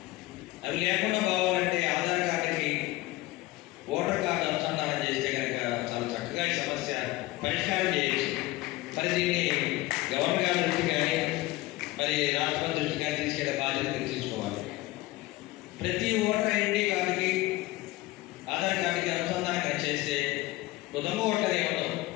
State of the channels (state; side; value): quieter; right; 19.2 dB